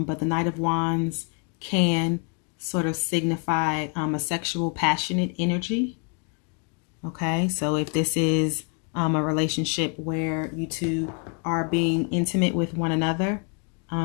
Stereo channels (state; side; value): quieter; right; 38.0 dB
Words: the Knight of Wands can sort of signify a sexual, passionate energy. Okay, so if this is a relationship where you two are being intimate with one another,